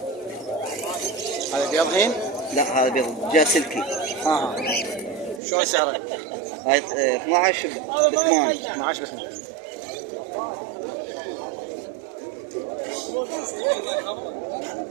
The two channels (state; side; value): drops out; left; at 5.4 s